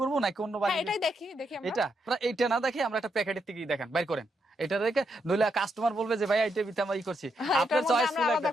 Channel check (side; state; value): both; normal; correlation 0.80